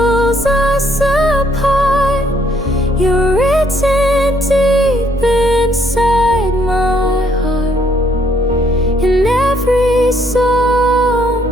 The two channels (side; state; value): both; normal; correlation 0.68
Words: us apart, you're written deep inside my heart. In every song,